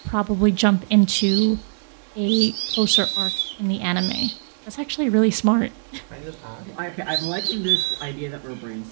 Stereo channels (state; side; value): silent; left; digital silence